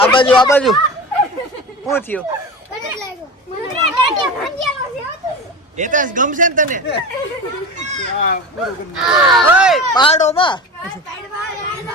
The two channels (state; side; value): normal; both; correlation 0.30